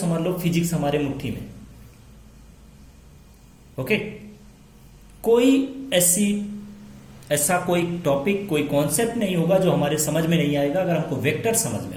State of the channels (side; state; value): both; identical; correlation 1.00